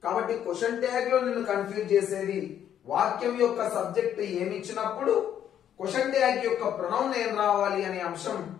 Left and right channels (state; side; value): quieter; right; 9.9 dB